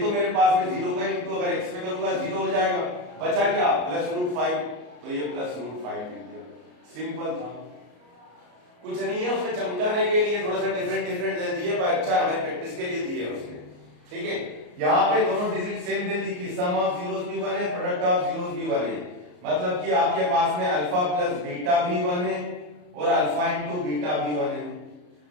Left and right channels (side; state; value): left; late; 34 ms